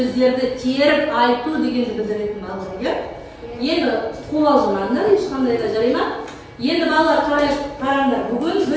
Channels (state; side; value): identical; both; correlation 1.00